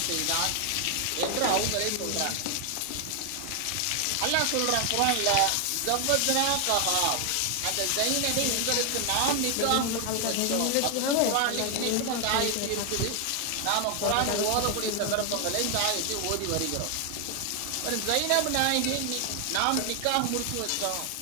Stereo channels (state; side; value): different; both; correlation 0.00